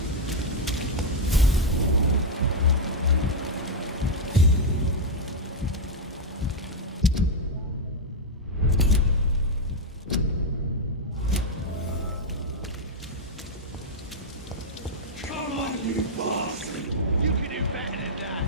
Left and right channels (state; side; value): normal; both; correlation -0.01